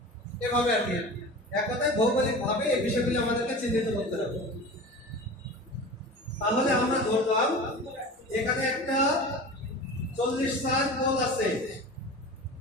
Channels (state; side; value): normal; both; correlation 0.34